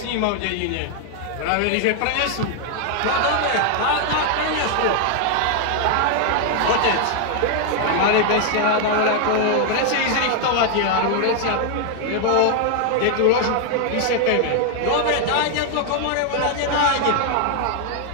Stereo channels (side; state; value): both; different; correlation 0.00